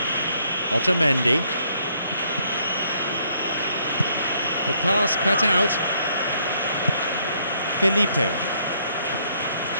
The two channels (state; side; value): inverted; both; correlation -0.68